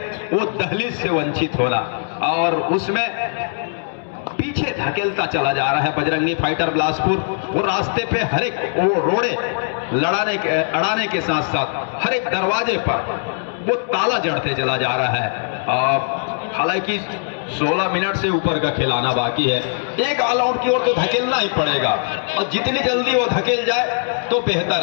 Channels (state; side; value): silent; right; 66 dB below the other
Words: वो दहलीज से वंचित होना, और उसमें पीछे धकेलता चला जा रहा है बजरंगी फाइटर बिलासपुर। वो रास्ते पे हर एक वो रोड़े अड़ाने के साथ साथ हर एक दरवाजे पर वो ताला जड़ते चला जा रहा है। और हालांकि 16 मिनट से ऊपर का खिलाना बाकी है, एक ऑल आउट की ओर तो धकेलना ही पड़ेगा, और जितनी जल्दी वो धकेल जाए तो बेहतर